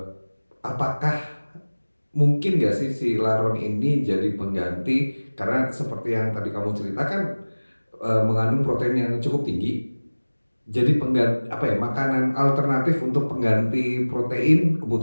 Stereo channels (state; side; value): inverted; both; correlation -1.00